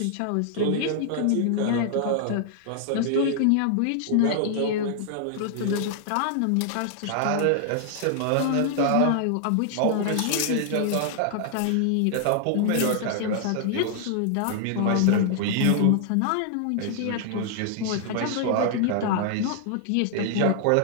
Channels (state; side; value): different; both; correlation -0.01